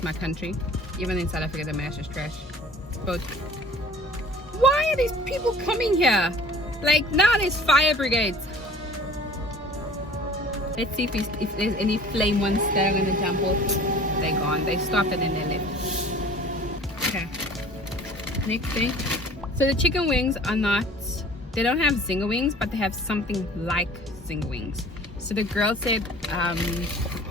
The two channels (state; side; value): normal; both; correlation 0.47